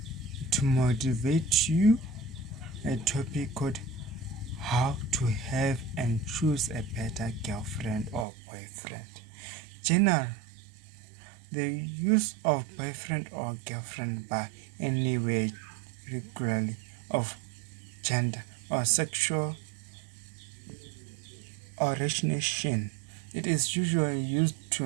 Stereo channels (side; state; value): left; drops out; at 8.2 s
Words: to motivate you a topic called how to have and choose a better girlfriend or boyfriend. General, the use of boyfriend or girlfriend by anywhere regularly of gender or sexual origination. It is usually used to